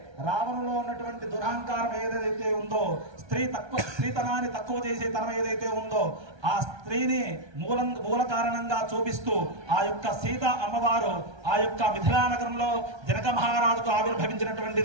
రావణులో ఉన్నటువంటి దురహంకారం ఏదైతే ఉందో, స్త్రీతనాన్ని తక్కువ చేసే తనం ఏదైతే ఉందో ఆ స్త్రీని మూల కారణంగా చూపిస్తూ ఆ యొక్క సీత అమ్మవారు ఆ యొక్క మిథిలా నగరంలో జనక మహారాజుకు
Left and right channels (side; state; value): left; late; 1.3 ms